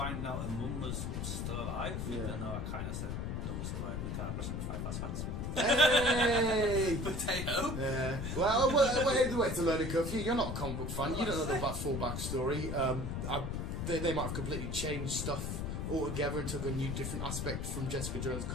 out her mum was still alive. Yeah. Even though I kind of said no one's still alive in the car crashing with 5 fast facts. Hey! Potato! Yeah. Well, we're the way to learn a curve. You're not a comic book fan. You don't know the full backstory. They might have completely changed stuff altogether and took a new, different aspect from Jessica Jones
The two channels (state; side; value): noise; left; rumble, 3 dB below the sound